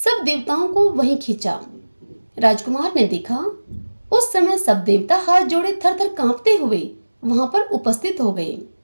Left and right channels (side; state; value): both; inverted; correlation -1.00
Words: देवताओं को वहीं खींचा। राजकुमार ने देखा उस समय सब देवता हाथ जोड़े थर थर कांपते हुए वहां पर उपस्थित हो गए।